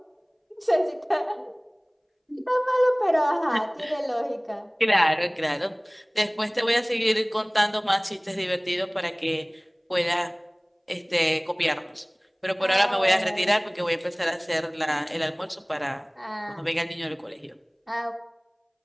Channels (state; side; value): identical; both; correlation 1.00